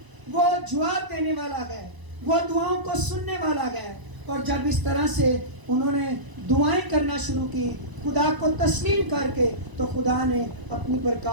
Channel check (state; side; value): late; left; 1.0 ms